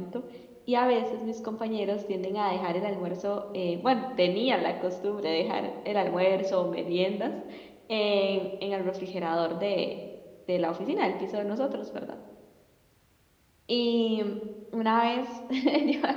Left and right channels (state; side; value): identical; both; correlation 1.00